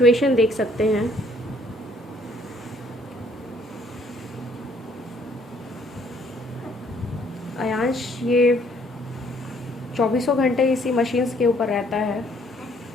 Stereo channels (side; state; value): both; normal; correlation 0.64